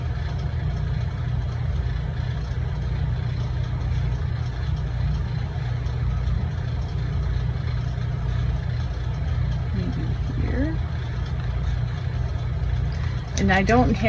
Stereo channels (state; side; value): identical; both; correlation 1.00